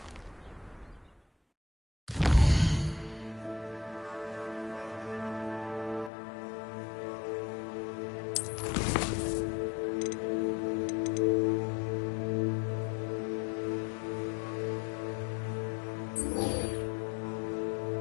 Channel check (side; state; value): right; drops out; at 6.1 s